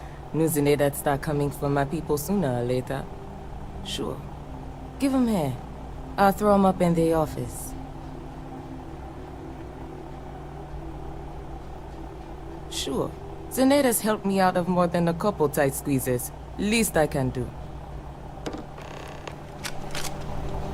News in there that start coming from my people sooner or later. Sure. Give 'em here. I'll throw 'em up in the office. Sure. Zeneda's helped me out of more than a couple tight squeezes. Least I can do.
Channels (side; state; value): both; identical; correlation 1.00